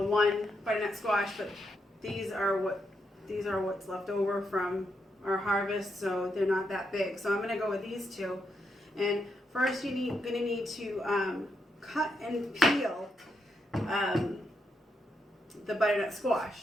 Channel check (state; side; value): normal; both; correlation 0.81